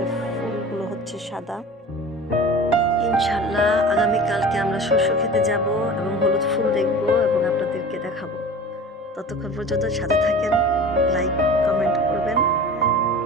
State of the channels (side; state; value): both; normal; correlation 0.37